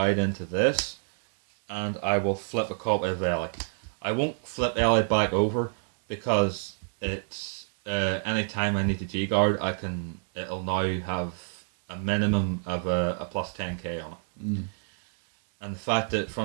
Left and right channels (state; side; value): silent; left; 59 dB below the other